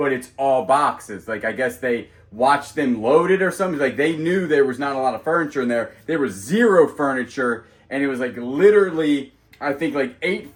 it's all boxes. Like, I guess they watched them load it or something. Like, they knew there was not a lot of furniture in there. There was zero furniture, and it was like literally, I think like 8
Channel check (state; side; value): identical; both; correlation 1.00